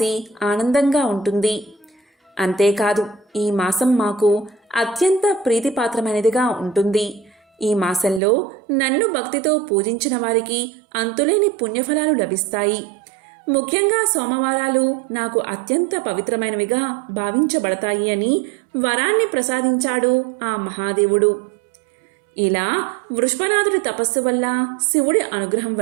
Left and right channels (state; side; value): drops out; left; at 8.2 s